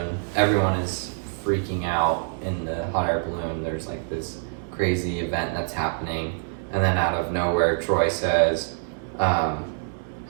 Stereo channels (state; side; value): silent; left; digital silence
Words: everyone is freaking out in the hot air balloon. There's like this crazy event that's happening, and then out of nowhere Troy says,